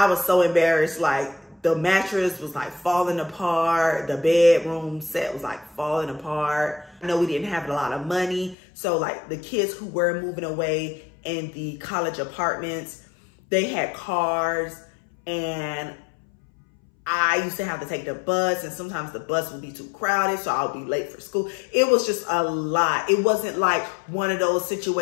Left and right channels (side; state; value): right; drops out; at 8.6 s